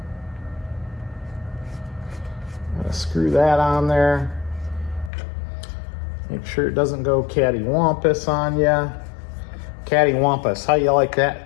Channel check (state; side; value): drops out; right; at 5.1 s